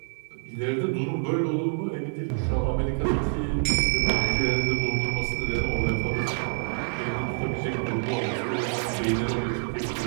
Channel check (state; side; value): silent; left; digital silence